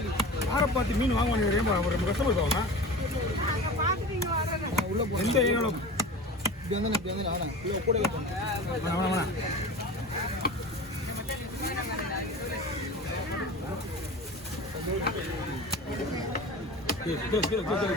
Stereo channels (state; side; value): normal; both; correlation 0.34